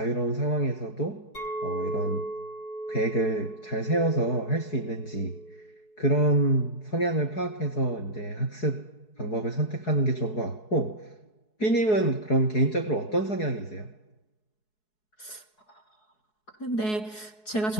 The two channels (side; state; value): right; late; 4.7 ms